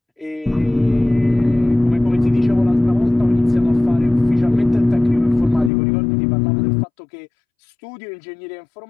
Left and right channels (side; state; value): right; drops out; at 5.7 s